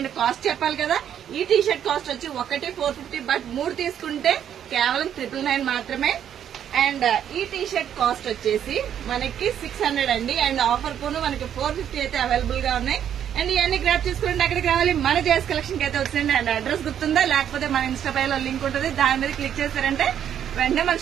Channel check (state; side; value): quieter; left; 9.6 dB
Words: కాస్ట్ చెప్పాలి కదా, ఈ టీ షర్ట్ కాస్ట్ వచ్చి ఒకటి 450, బట్ 3 తీసుకుంటే కేవలం 999 మాత్రమే. అండ్ ఈ టీ షర్ట్ కాస్ట్ వచ్చేసి మనకి 600 అండి. అండ్ ఆఫర్ పోను మనకి 450 అయితే అవైలబుల్ గా ఉన్నాయి. అండ్ ఇవన్నీ గ్రాప్ చేసుకోండి. అక్కడికి రావాలి, మన జేఎస్ కలెక్షన్ కి అయితే వచ్చింది. అండ్ అడ్రస్ గుర్తుందా? లేకపోతే మన ఇన్స్టా పైలో లింక్ ఉంటుంది, దాని మీద క్లిక్ చేశారంటే వెంటనే మన